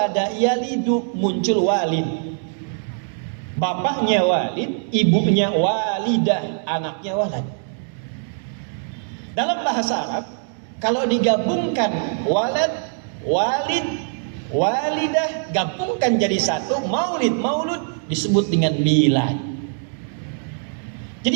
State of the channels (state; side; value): silent; left; digital silence